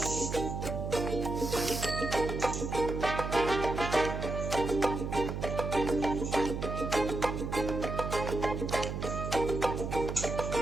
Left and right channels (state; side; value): noise; right; hum, 4 dB below the sound